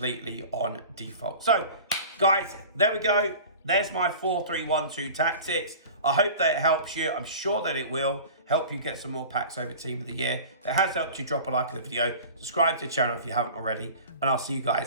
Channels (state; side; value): inverted; both; correlation -0.38